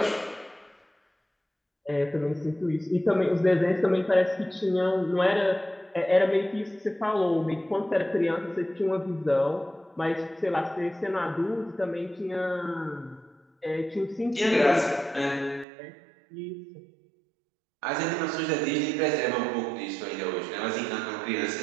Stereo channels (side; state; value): left; drops out; at 15.7 s